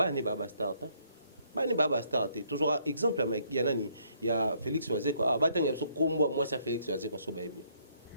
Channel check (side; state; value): both; inverted; correlation -0.68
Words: ne baba star bani baba star toujours exemple il y a nani il y a Félix Oazé quoi batanga so kombo moi ça Félix Oazé quoi so baby